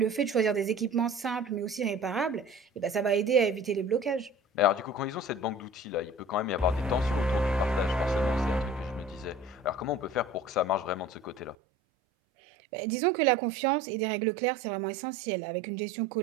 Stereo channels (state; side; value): drops out; left; at 11.6 s